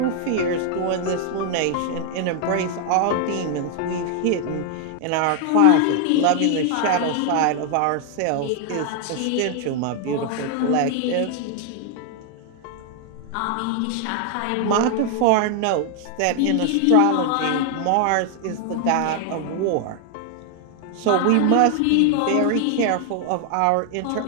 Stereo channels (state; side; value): different; both; correlation 0.00